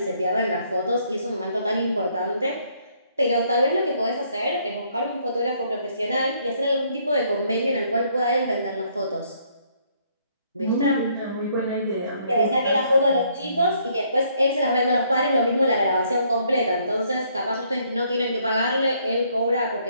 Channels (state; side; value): inverted; both; correlation -0.68